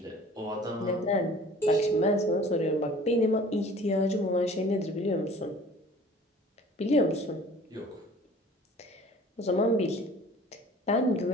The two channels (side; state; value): both; normal; correlation 0.48